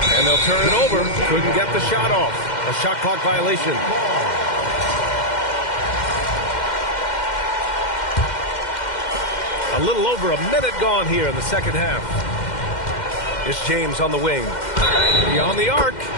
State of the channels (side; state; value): right; late; 2.1 ms